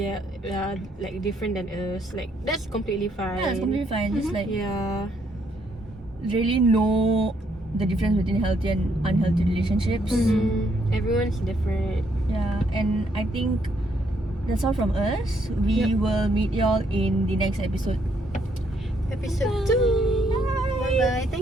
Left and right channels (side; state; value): both; normal; correlation 0.72